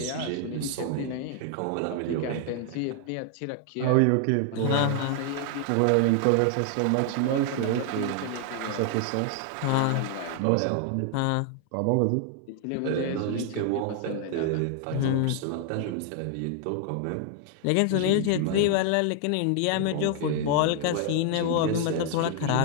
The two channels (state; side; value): different; both; correlation 0.00